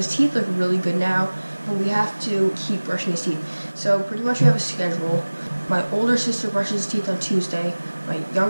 teeth look really good now, but we have to keep brushing his teeth. So pretty much we have a schedule. My older sister brushes his teeth on Tuesday. My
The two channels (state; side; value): inverted; both; correlation -1.00